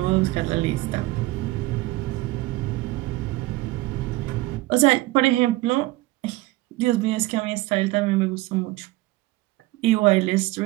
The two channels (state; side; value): quieter; left; 19.4 dB